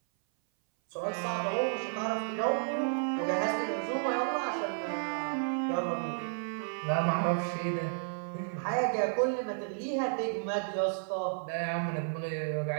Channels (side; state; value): left; silent; 56 dB below the other